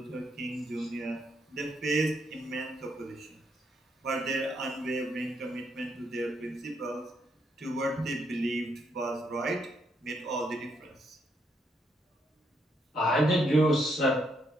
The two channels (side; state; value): both; normal; correlation 0.76